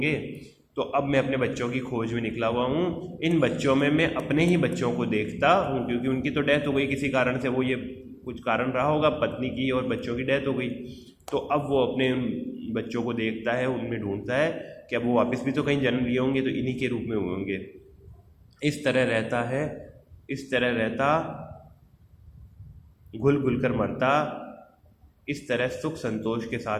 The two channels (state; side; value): identical; both; correlation 1.00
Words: तो अब मैं अपने बच्चों की खोज में निकला हुआ हूँ। इन बच्चों में मैं अपने ही बच्चों को देखता हूँ, क्योंकि उनकी तो डेथ हो गई किसी कारण से, वो ये कुछ कारण रहा होगा, पत्नी की और बच्चों की डेथ हो गई। तो अब वो अपने उन बच्चों को देखता है, उनमें ढूंढता है कि अब वो वापस भी तो कहीं जन्म लिए होंगे, तो इन्हीं के रूप में हुए होंगे। इस तरह रहता है, इस तरह रहता, घुल घुल कर मरता, इस तरह सुख संतोष के